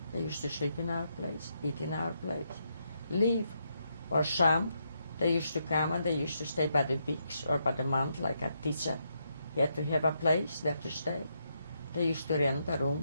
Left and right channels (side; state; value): both; inverted; correlation -0.79